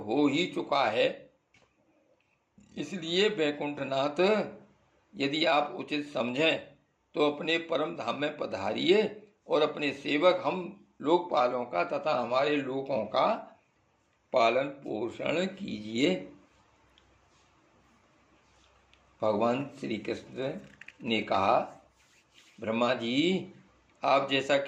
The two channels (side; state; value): both; identical; correlation 1.00